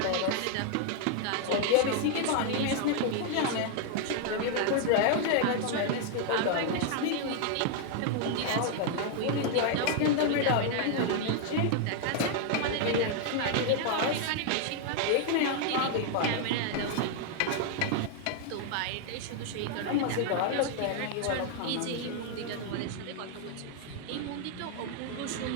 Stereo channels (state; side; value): different; both; correlation 0.00